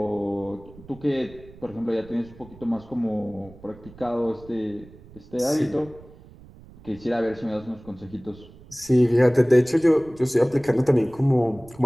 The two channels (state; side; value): noise; right; rumble, 21 dB below the sound